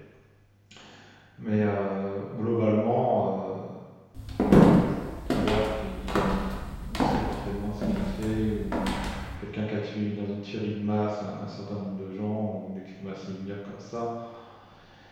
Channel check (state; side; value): identical; both; correlation 1.00